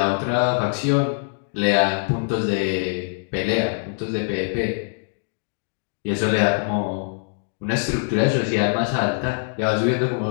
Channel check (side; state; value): right; silent; digital silence